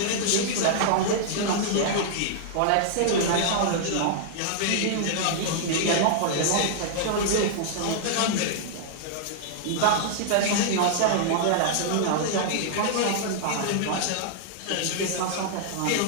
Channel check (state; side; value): different; both; correlation -0.01